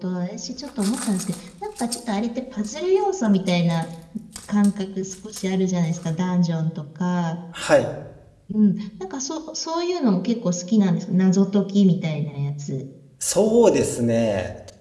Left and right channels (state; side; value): identical; both; correlation 1.00